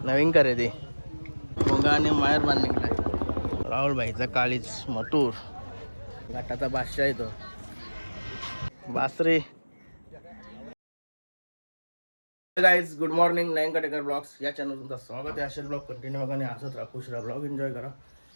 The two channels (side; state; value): both; inverted; correlation -1.00